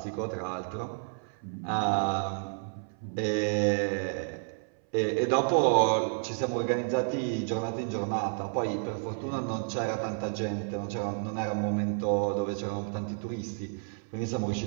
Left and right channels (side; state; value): left; silent; 57 dB below the other